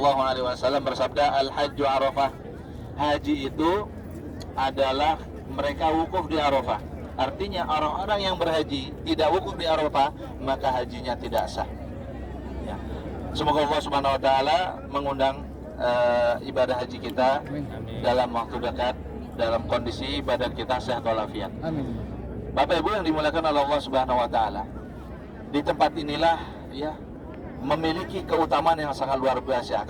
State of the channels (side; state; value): both; identical; correlation 1.00